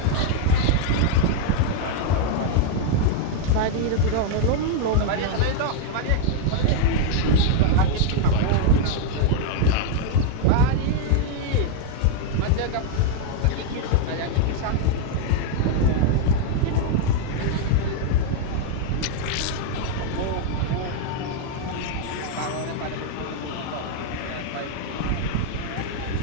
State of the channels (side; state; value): both; different; correlation 0.00